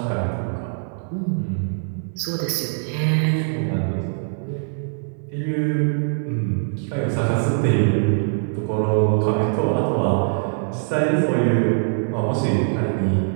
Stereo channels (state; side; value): silent; left; 58 dB below the other